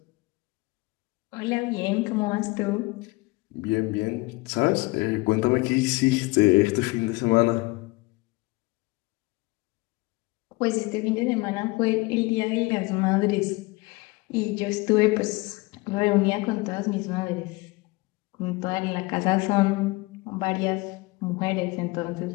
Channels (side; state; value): right; quieter; 23.7 dB